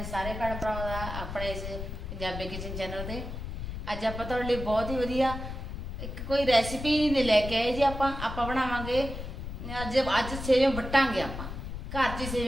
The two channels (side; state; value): left; noise; rumble, 7 dB below the sound